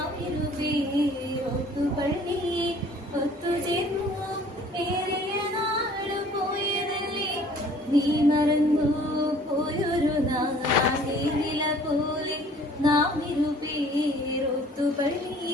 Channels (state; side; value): normal; both; correlation 0.53